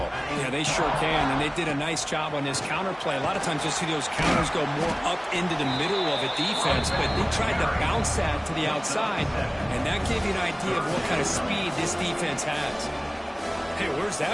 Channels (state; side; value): identical; both; correlation 1.00